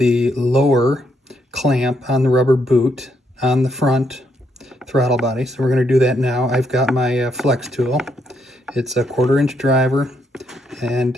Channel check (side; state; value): both; normal; correlation 0.76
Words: lower clamp on the rubber boot on the front throttle body. So we're going to do that now. I've got my flex tool. It's a 1/4-inch driver, and